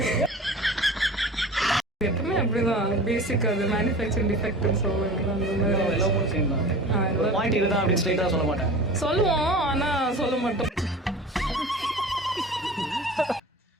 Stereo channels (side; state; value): both; normal; correlation 0.38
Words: எப்பவுமே அப்படிதான். பேசிக் அது மேனுஃபேக்சரிங் டிஃபெக்ட்னு சொல்லுவாங்க. அந்த மாதிரி எல்லாமே சேம் தான். பாயிண்ட் இதுதான் அப்படின்னு ஸ்ட்ரைட்டா சொல்ல மாட்டேன். சொல்லுவோம், ஆனா சொல்ல மாட்டோம்.